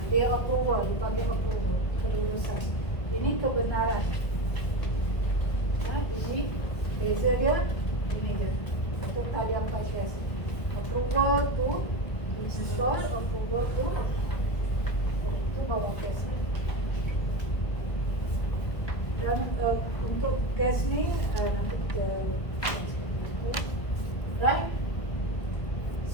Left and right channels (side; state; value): right; late; 1.5 ms